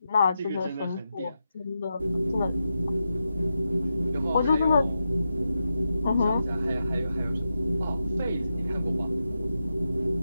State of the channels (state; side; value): inverted; both; correlation -0.88